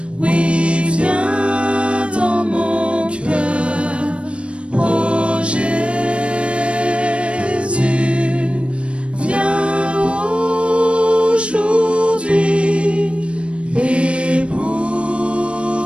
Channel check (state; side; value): late; left; 0.059 ms